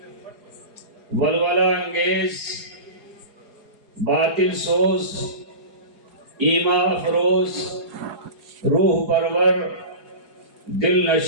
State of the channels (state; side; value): late; left; 4.8 ms